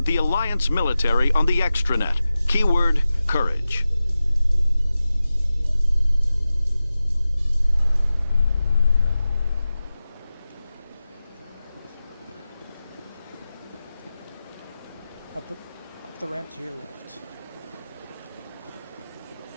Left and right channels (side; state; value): both; inverted; correlation -0.95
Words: the Alliance military on the extranet. Keyword, courage. Up the ramp to your left.